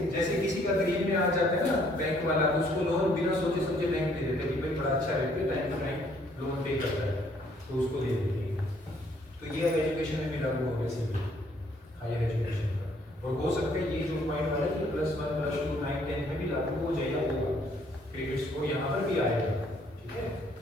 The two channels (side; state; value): both; normal; correlation 0.65